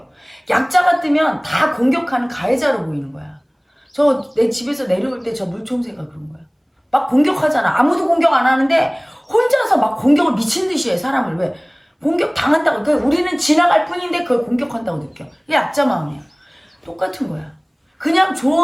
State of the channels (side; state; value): both; identical; correlation 1.00